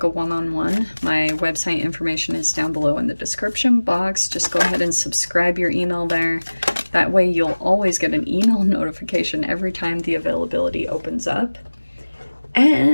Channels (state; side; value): inverted; both; correlation -1.00